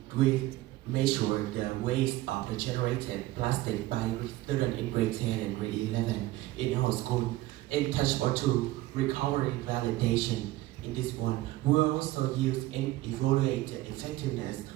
we measure the waste of the generated plastic by students in grade 10 and grade 11 in our school. In touch point 2, recovery validation. In this one, we also use and evaluate the effectiveness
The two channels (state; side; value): quieter; left; 17.2 dB